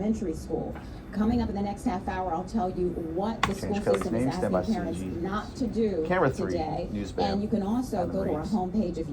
school. Coming up in the next half hour, I'll tell you what the school Change Kelly's system is name. Stand by asking parents CG. not to do Camera 3, today. news band. And you can also Adam go to our Reeves. homepage if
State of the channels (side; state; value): both; identical; correlation 1.00